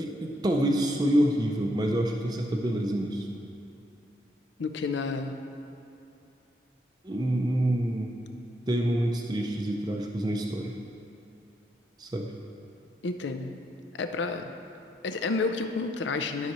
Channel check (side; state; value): both; normal; correlation 0.76